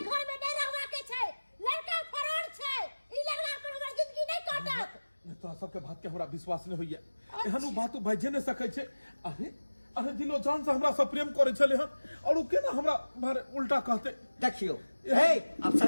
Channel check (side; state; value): both; inverted; correlation -1.00